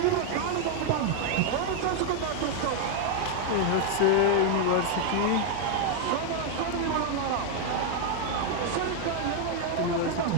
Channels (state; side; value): different; both; correlation 0.00